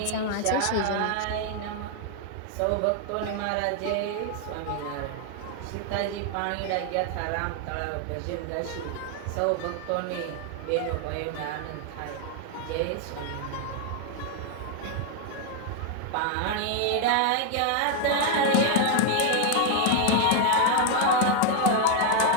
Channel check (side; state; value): both; different; correlation 0.00